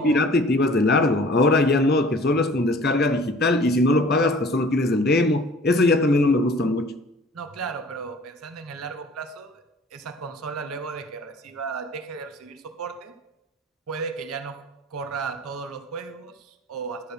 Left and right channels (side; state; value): both; normal; correlation 0.49